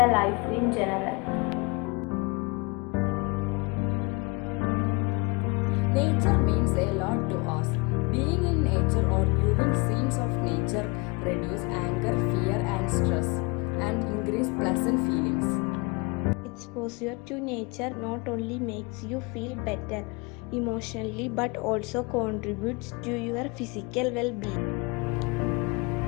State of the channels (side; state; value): right; quieter; 28.1 dB